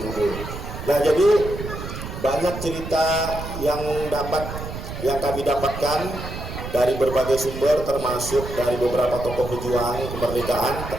gugur. Nah, jadi banyak cerita yang kami dapatkan dari berbagai sumber, termasuk dari beberapa tokoh pejuang kemerdekaan,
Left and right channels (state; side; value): noise; right; rumble, 8 dB below the sound